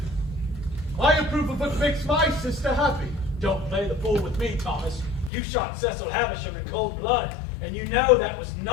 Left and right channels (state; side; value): drops out; right; at 5.3 s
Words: I approve of what makes my sister happy. Don't play the fool with me, Thomas. You shot Cecil Havisham in cold blood, and you know that was